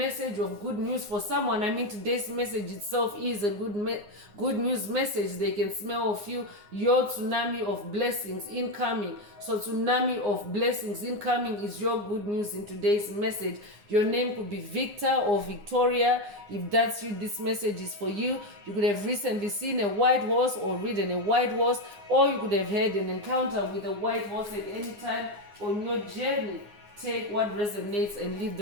of good news for someone. I mean, today's message itself is a good news message. They can smell of you, your tsunami of blessings incoming. So tsunami of blessings incoming is your good news in today's message. Your name could be Victor or Victoria. If that's you, this message is for you. You could have recently seen a white horse or ridden a white horse, or you could have had an encounter with a white horse at any time on your journey. Take what resonates and leave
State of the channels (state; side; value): late; left; 9.6 ms